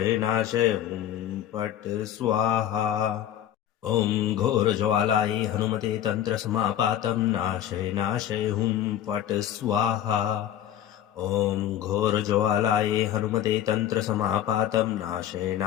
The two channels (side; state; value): right; quieter; 11.2 dB